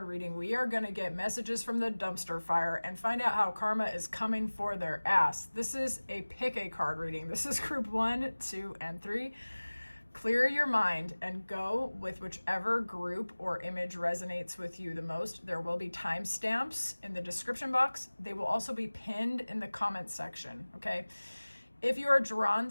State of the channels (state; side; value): inverted; both; correlation -1.00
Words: reading, we are going to get messages from the dumpster fire and find out how karma is coming for their ass. This is a Pick a Card reading. This is group 1, 2, and 3. Clear your mind and go with whichever group or image resonates with you the most. There will be timestamps in the description box. They will also be pinned in the comment section, okay? If you are drawn